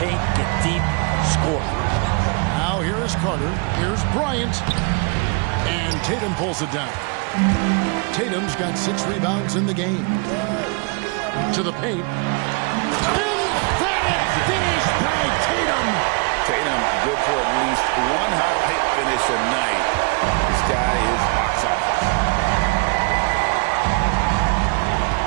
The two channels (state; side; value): quieter; left; 33.3 dB